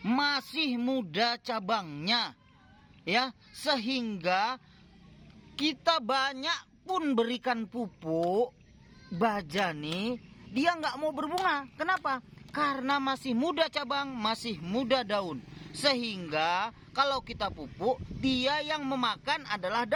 muda cabangnya, ya, sehingga kita banyak pun berikan pupuk baja nih, dia nggak mau berbunga. Kenapa? Karena masih muda cabang, masih muda daun, sehingga kalau kita pupuk, dia yang memakan adalah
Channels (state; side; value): identical; both; correlation 1.00